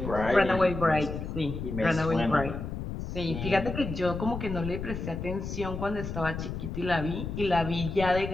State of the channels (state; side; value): noise; left; rumble, 6 dB below the sound